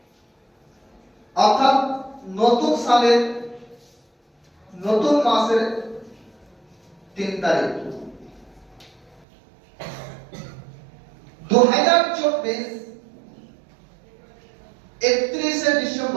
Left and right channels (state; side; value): drops out; left; at 9.2 s